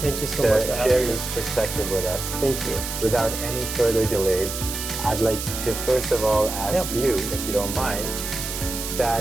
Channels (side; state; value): right; noise; hiss, 6 dB below the sound